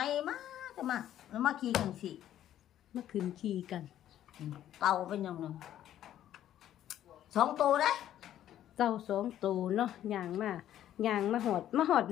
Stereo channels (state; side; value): quieter; right; 11.7 dB